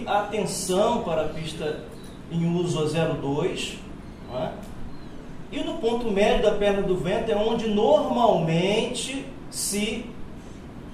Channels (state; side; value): identical; both; correlation 1.00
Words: a atenção para a pista em uso a 02, não é? E no ponto médio da perna do vento é onde normalmente se